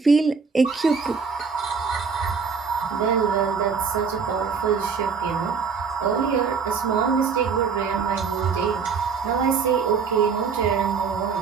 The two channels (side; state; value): left; quieter; 5.7 dB